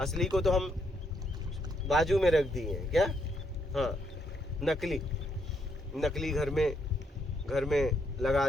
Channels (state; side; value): normal; both; correlation 0.75